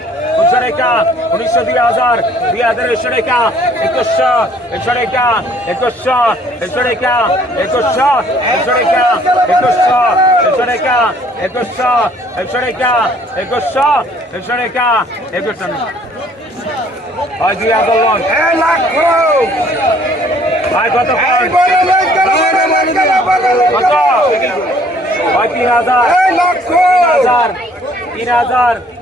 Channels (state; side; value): normal; both; correlation 0.59